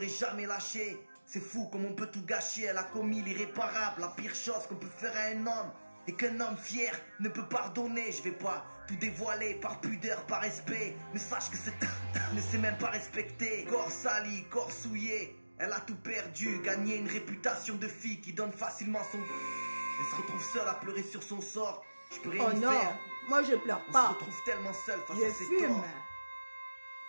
jamais lâché. C'est fou comme on peut tout gâcher. Elle a commis l'irréparable, la pire chose qu'on peut faire à un homme. Et qu'un homme fier ne peut pardonner. Je vais pas tout dévoiler par pudeur, par respect. Mais sache que cette ne sait même pas respecter. Corps sali, corps souillé. Elle a tout perdu, gagné une réputation de fille qui donne facilement son... Elle se retrouve seule à pleurer sur son sort. Je peux rien y faire. Oh non, moi je pleure pas. On se retrouve tellement seule face à ses torts.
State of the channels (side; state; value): both; inverted; correlation -1.00